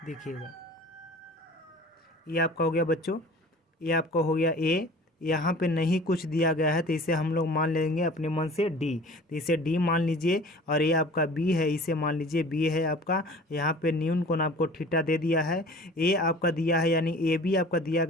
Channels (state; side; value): normal; both; correlation 0.44